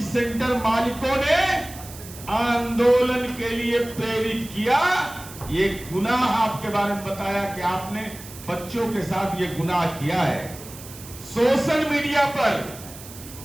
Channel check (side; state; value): right; noise; hiss, 16 dB below the sound